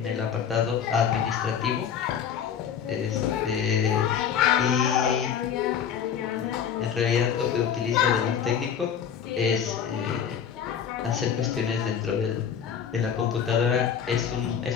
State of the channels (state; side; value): quieter; right; 8.1 dB